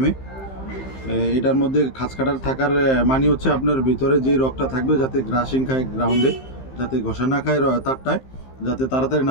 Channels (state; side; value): late; right; 15 ms